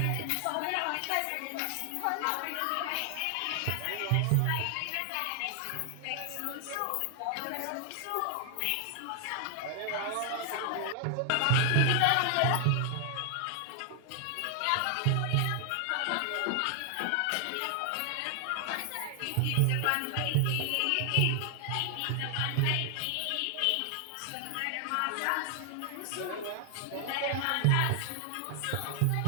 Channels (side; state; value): both; different; correlation 0.00